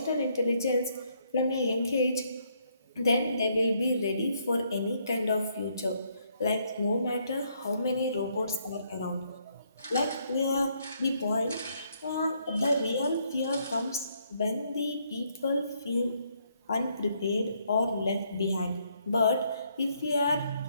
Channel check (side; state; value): both; inverted; correlation -0.72